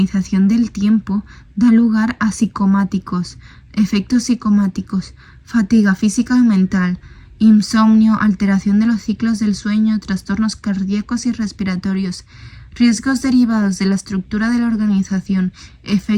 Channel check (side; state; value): both; identical; correlation 1.00